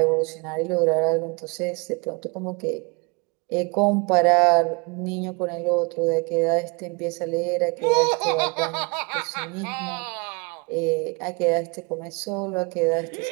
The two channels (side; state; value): left; quieter; 30.4 dB